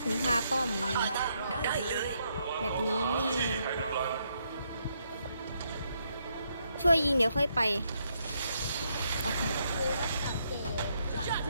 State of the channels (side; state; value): both; inverted; correlation -0.76